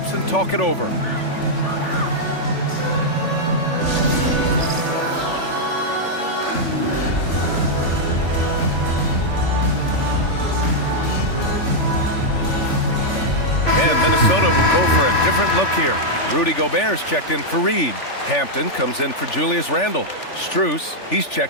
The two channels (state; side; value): late; right; 3.4 ms